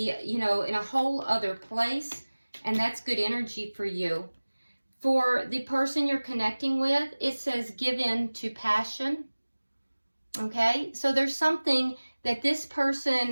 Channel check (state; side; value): inverted; both; correlation -1.00